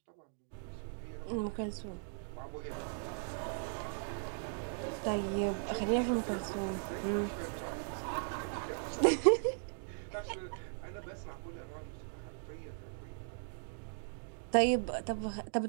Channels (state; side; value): silent; left; digital silence